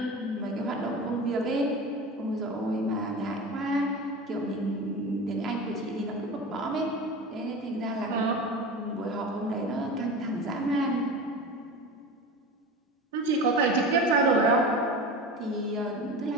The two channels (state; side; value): normal; both; correlation 0.30